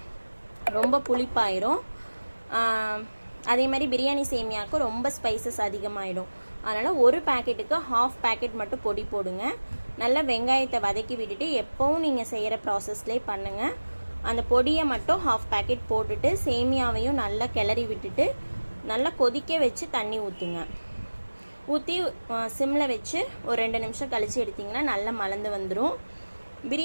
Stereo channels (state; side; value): inverted; both; correlation -1.00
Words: ரொம்ப புளிப்பாயிரும். அதே மாதிரி பிரியாணி சேமியாவுக்கு ரொம்ப ஸ்பைசஸ் அதிகமாகிடும். அதனால் ஒரு பேக்கெட்டுக்கு ஹாஃப் பேக்கெட் மட்டும் பொடி போடுங்க. நல்லா வெங்காயத்தை வதக்கி விட்டுட்டு எப்போவும் நீங்கள் செய்கிற ப்ராசஸ்லேயே பண்ணுங்கள். அந்த பொடியை மட்டும் ஹாஃப் பேக்கெட் போட்டுட்டு சேமியாவையும் நல்லா கிளறி விட்டுட்டு நல்லா கொதிக்க வச்சு தண்ணி ஊற்றுங்க. ஊற்றி சிம்மில் வச்சு ஒரு 2 நிமிஷம் கழித்து எடுத்திங்கன்னா நல்லா மலர்ந்து வந்துடும்.